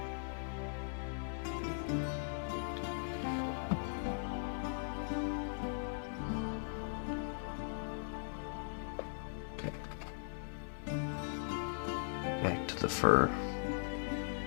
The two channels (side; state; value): right; silent; 52 dB below the other